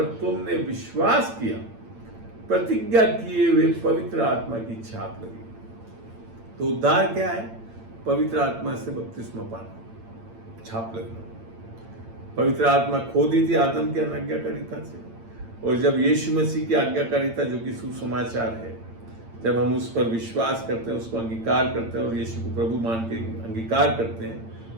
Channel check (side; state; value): left; late; 8.8 ms